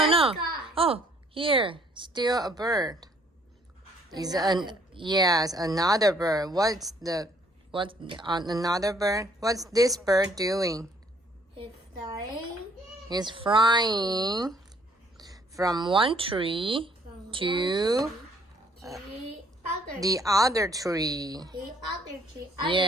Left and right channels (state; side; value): normal; both; correlation 0.63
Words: no. Sky. Oh, here, still a bird. Is Another. yes, another bird. What's another bird? What's this bird doing? It's flying It's flying from one tree from to the other the other tree. the other tree.